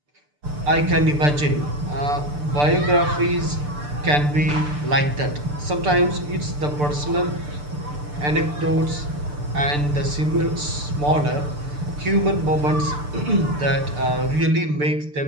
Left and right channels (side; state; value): left; late; 6.8 ms